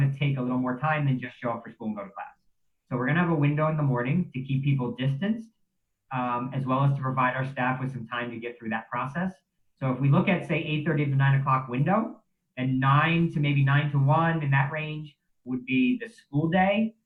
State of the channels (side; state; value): both; identical; correlation 1.00